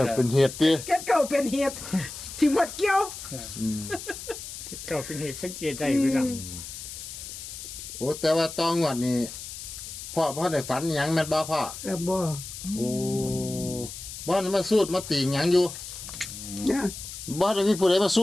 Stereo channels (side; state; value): left; noise; hiss, 10 dB below the sound